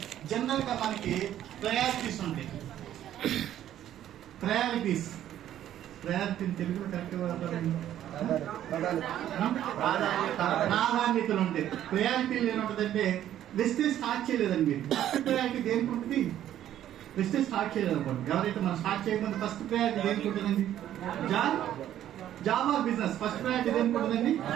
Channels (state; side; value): quieter; left; 11.7 dB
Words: జనరల్ గా మనకి ప్రయారిటీస్ ఉంటాయి. ప్రయారిటీ తెలుగులో కరెక్ట్ ప్రాధాన్యతలు ఉంటాయి. ప్రయారిటీలు ఏముంటుందంటే వెస్టేజ్ స్టార్ట్ చేయలేదండి మీరు. ఫస్ట్ ప్రయారిటీ దేనికి ఉంటుంది? వెస్టేజ్ స్టార్ట్ చేయలేదు అనుకోండి. ఎవరైతే మనం స్టార్ట్ చేయకుండా ఫస్ట్ ప్రయారిటీ దేనికి ఉంటుందండి? Job or business. First priority దేనికి ఉంటుందండి?